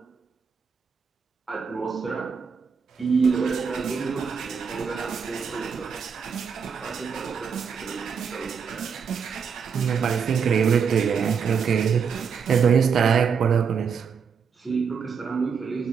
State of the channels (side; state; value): left; quieter; 6.3 dB